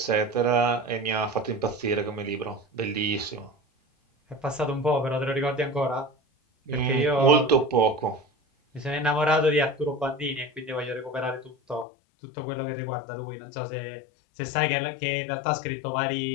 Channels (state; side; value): drops out; right; at 11.9 s